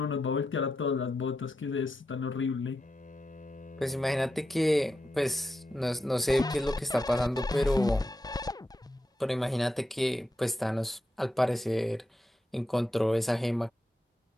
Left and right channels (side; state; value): both; normal; correlation 0.87